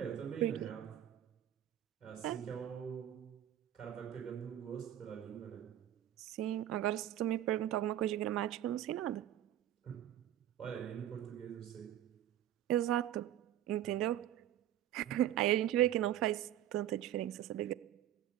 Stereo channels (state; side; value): quieter; left; 12.1 dB